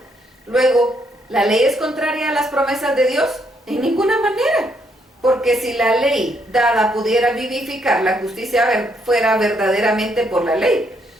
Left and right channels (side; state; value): both; normal; correlation 0.73